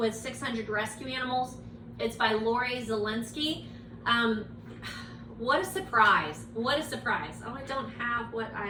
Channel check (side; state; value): both; identical; correlation 1.00